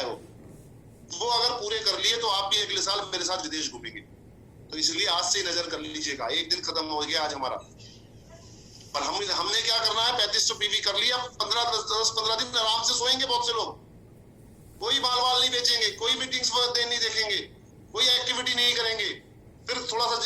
वो अगर पूरे कर लिए तो आप भी अगले साल मेरे साथ विदेश घूमेंगे। तो इसलिए आज से नजर कर लीजिएगा। एक दिन खत्म हो गया आज हमारा, पर हमने क्या करना है, 3500 PV कर लिया। 10-15 दिन आराम से सोएंगे बहुत से लोग, कोई बाल नहीं बेचेंगे, कोई मीटिंग्स नहीं देखेंगे, कोई एक्टिविटी नहीं करेंगे। फिर थोड़ा सा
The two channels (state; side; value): identical; both; correlation 1.00